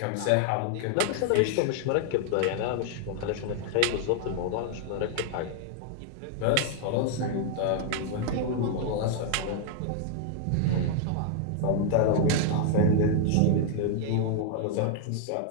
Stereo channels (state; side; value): different; both; correlation 0.00